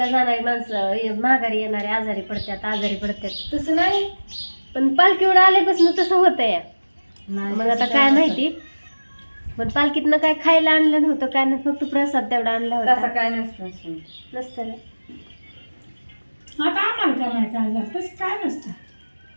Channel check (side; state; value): both; inverted; correlation -1.00